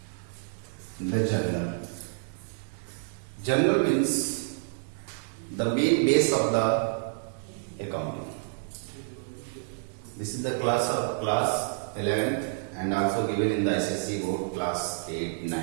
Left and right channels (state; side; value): silent; left; digital silence